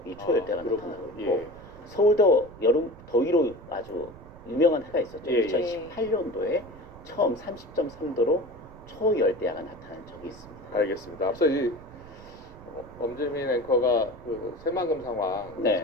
이 초열대야가 나타나고 있고 예. 서울도 여름 더위로 아주 유명한 해가 있었죠. 예, 예. 2018년도에 처음 30.3도로 초열대야가 나타난 적이 있습니다. 알겠습니다. 앞서 이 엄지민 앵커가 그 새만금 상황 네.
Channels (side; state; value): right; noise; rumble, 19 dB below the sound